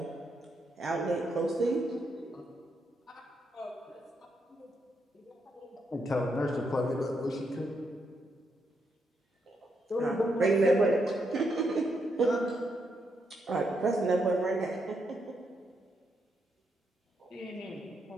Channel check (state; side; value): normal; both; correlation 0.80